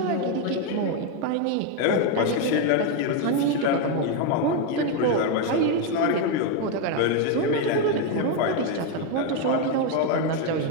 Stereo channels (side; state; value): both; different; correlation 0.02